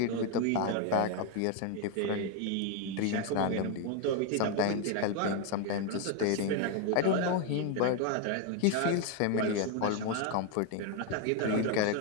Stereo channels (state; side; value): different; both; correlation 0.01